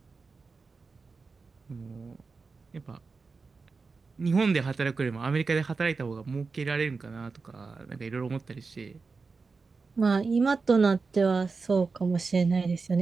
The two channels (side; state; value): left; quieter; 4.4 dB